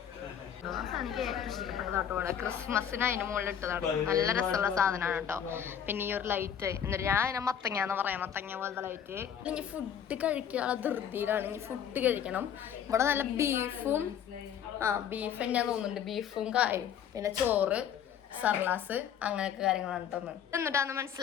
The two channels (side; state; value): right; quieter; 8.8 dB